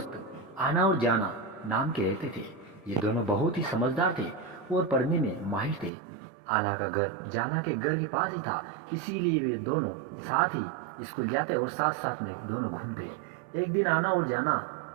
आना और जाना नाम के रहते थे। ये दोनों बहुत ही समझदार थे और पढ़ने में माहिर थे। आना का घर जाना के घर के पास ही था, इसीलिए वे दोनों साथ ही स्कूल जाते और साथ साथ में दोनों घूमते। एक दिन आना और जाना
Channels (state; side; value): drops out; left; at 5.9 s